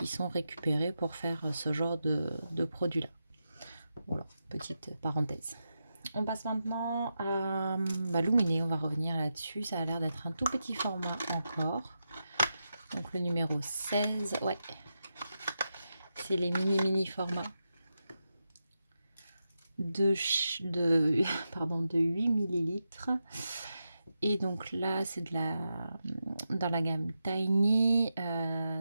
sont récupérées pour faire ce genre de produit-là. Voilà, petite parenthèse. On passe maintenant à Luminé, on va revenir là-dessus. Ça a l'air d'être un tout petit format encore. Donc le numéro 16, ouais, c'est les mini formats de 8 millilitres. Et donc là, c'est dans la gamme Tiny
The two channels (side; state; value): both; inverted; correlation -0.88